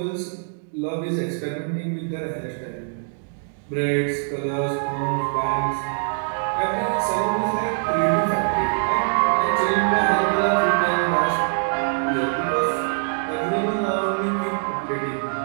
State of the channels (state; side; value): silent; left; digital silence